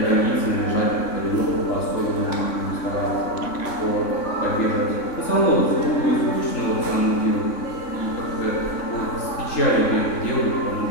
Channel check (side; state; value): right; late; 3.6 ms